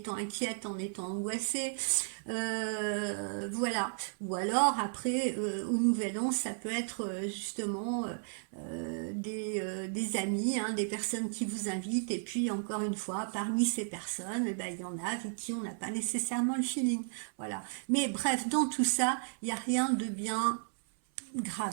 inquiète, en étant angoissée. Voilà. Ou alors après, au Nouvel An, ça peut être justement des amis, hein, des personnes qui vous invitent. Et puis encore une fois, parmi ces personnes, eh ben, il y en a avec qui on n'a pas nécessairement le feeling. Voilà. Mais bref, dans tout ça, il n'y a rien de bien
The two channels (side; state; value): left; silent; 55 dB below the other